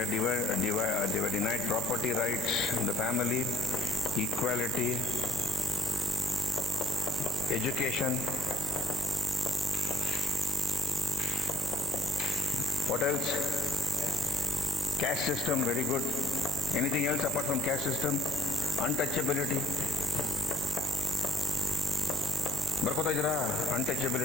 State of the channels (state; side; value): normal; both; correlation 0.60